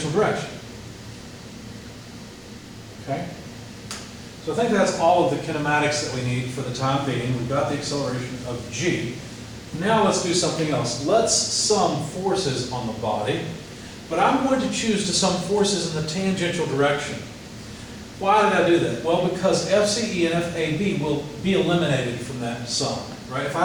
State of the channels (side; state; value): both; identical; correlation 1.00